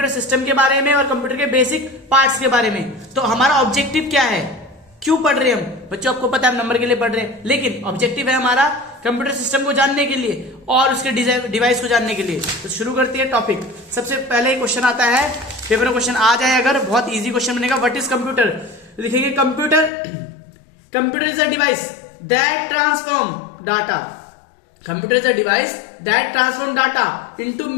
सिस्टम के बारे में और कंप्यूटर के बेसिक पार्ट्स के बारे में। तो हमारा ऑब्जेक्टिव क्या है, क्यों पढ़ रहे हैं हम बच्चों, आपको पता है हम नंबर के लिए पढ़ रहे हैं, लेकिन ऑब्जेक्टिव है हमारा कंप्यूटर सिस्टम को जानने के लिए और उसके डिवाइस को जानने के लिए। तो शुरू करते हैं टॉपिक। सबसे पहले क्वेश्चन आता है, पेपर में क्वेश्चन आ जाए अगर, बहुत इजी क्वेश्चन बनेगा। व्हाट इज कंप्यूटर, लिखेंगे computer is a device that transform data. Computer is a device that transform data into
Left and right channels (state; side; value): drops out; right; at 19.9 s